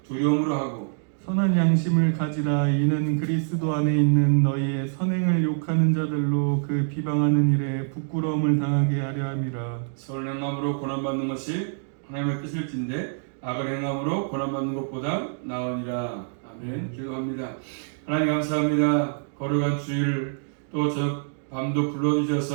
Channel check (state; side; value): silent; left; digital silence